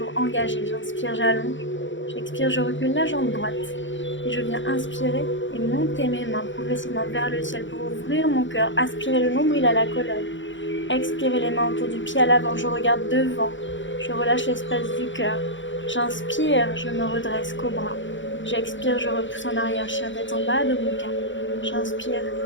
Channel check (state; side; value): late; right; 0.55 ms